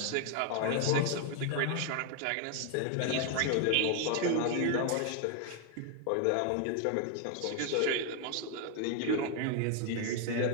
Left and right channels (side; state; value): both; different; correlation 0.00